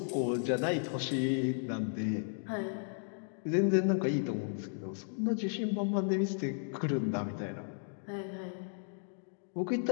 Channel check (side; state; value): right; silent; digital silence